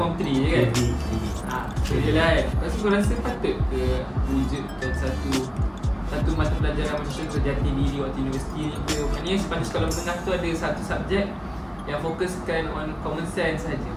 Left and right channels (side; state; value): both; identical; correlation 1.00